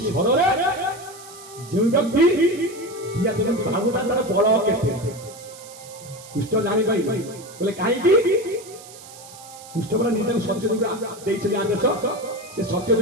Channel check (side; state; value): right; noise; hiss, 18 dB below the sound